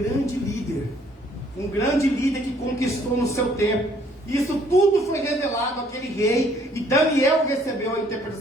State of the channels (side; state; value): both; normal; correlation 0.62